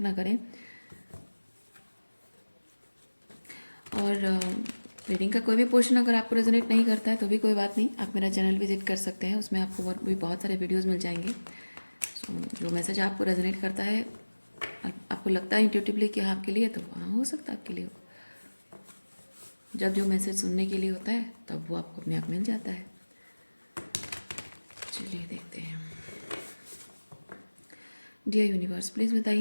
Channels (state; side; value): inverted; both; correlation -1.00